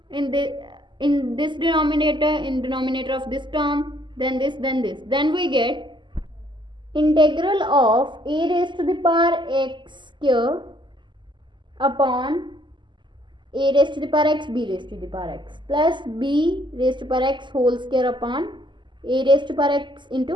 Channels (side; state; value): left; late; 0.23 ms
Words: in this denominator, in denominator of this term, then this, then this. Then we get integral of a raised to the power x square upon a raised to the power x b raised to the power x plus b raised to power x whole square upon a raised to power x